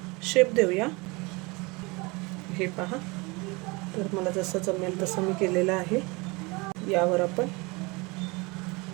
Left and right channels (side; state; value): left; quieter; 26.3 dB